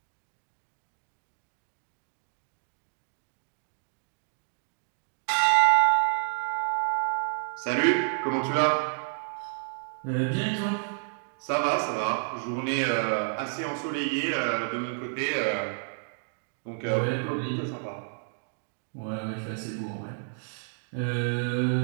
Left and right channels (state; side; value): silent; left; digital silence